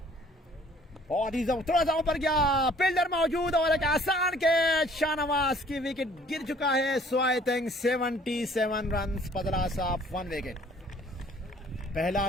बहुत ही थोड़ा सा ऊपर गया, फील्डर मौजूद और एक आसान कैच। शाहनवाज की विकेट गिर चुका है। सो आई थिंक 77 रन, बदला साफ 1 विकेट। पहला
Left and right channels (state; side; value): normal; both; correlation 0.56